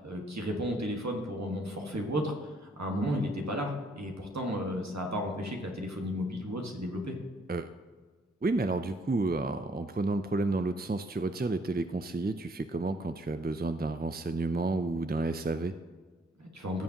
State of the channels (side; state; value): both; normal; correlation 0.65